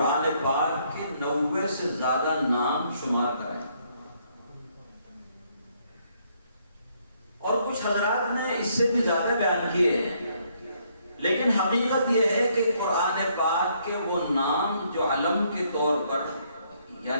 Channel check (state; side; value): inverted; both; correlation -0.70